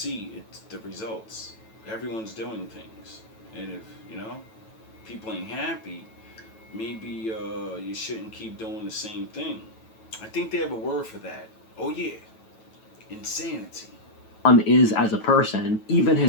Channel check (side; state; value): right; late; 9.1 ms